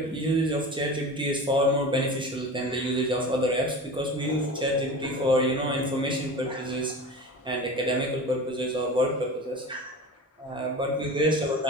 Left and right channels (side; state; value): both; normal; correlation 0.33